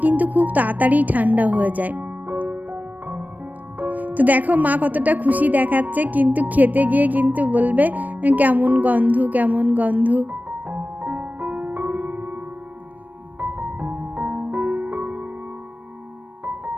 কিন্তু খুব তাড়াতাড়ি ঠান্ডা হয়ে যায়। তো দেখো মা কতটা খুশি দেখাচ্ছে, কিন্তু খেতে গিয়ে কিন্তু বলবে কেমন গন্ধ কেমন গন্ধ।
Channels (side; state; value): left; late; 0.081 ms